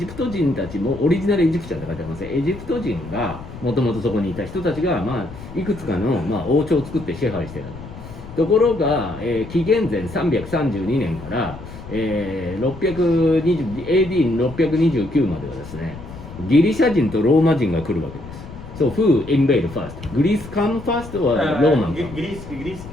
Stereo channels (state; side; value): noise; left; rumble, 14 dB below the sound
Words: ト人たちもオリジナルエジプシャンって書いてありますね。エジプト人がもともとそこにいた人たちがいくつかの王朝を作って支配してたところが、紀元前332年から、AD629 まではですね、ギリシャ人とローマ人が来るわけです。So who invade first? Greece come first or Roman come? Greece